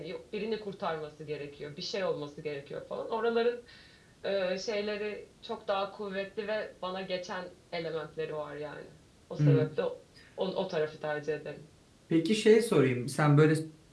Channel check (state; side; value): identical; both; correlation 1.00